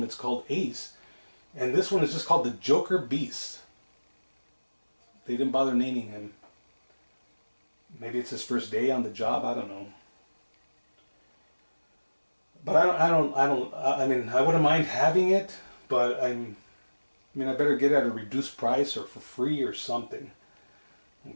It's called Ace. And this one is just called the Joker Beast. They didn't bother naming him. Maybe it's his first day on the job. I don't know. But I mean, I wouldn't mind having it, but I better get it at a reduced price or for free or something.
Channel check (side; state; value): both; inverted; correlation -1.00